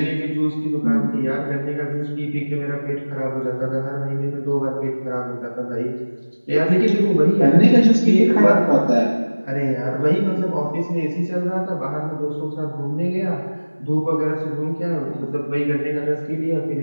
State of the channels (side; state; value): both; inverted; correlation -1.00